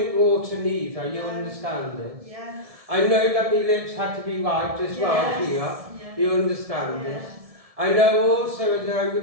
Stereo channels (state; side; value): late; left; 1.7 ms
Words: water neither, you understand this? I know that my lips had to be wiped as well here, you understand this? I know also